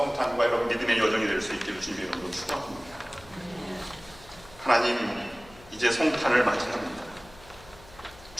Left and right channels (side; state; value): left; noise; hum, 22 dB below the sound